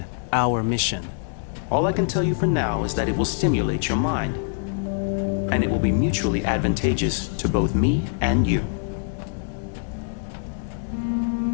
our mission? All I can tell you for now is that it will stimulate your mind. And it will be mutually advantageous to both me and you.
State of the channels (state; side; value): silent; right; 63 dB below the other